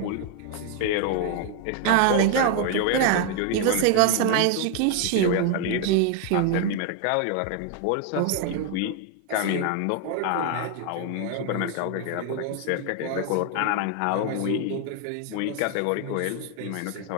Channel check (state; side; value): different; both; correlation 0.00